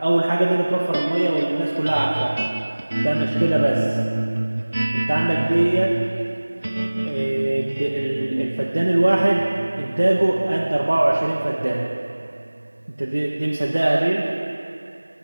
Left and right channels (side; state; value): both; inverted; correlation -1.00